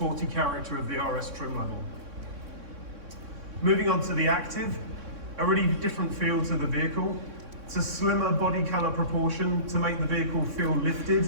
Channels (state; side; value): late; left; 3.6 ms